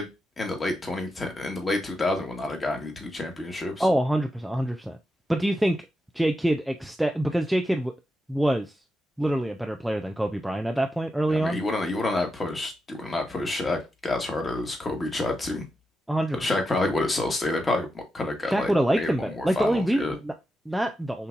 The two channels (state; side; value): normal; both; correlation 0.88